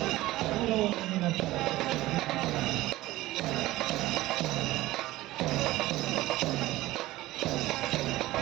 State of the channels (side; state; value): left; quieter; 17.3 dB